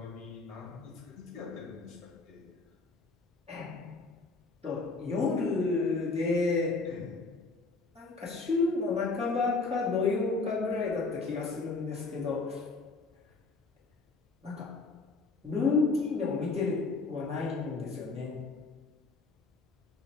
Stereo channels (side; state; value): right; quieter; 3.8 dB